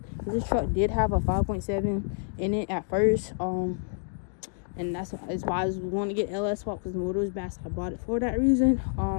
this truck did have a 5.7 in it at first, and that's why I was wanting to get LS swap, because the motor was bad, so I bought it for that reason.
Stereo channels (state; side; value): silent; right; digital silence